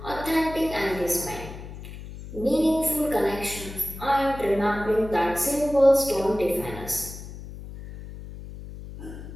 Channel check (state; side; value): noise; left; hum, 12 dB below the sound